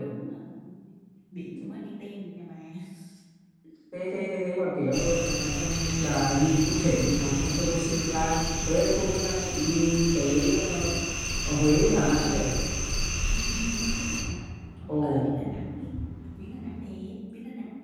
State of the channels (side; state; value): both; identical; correlation 1.00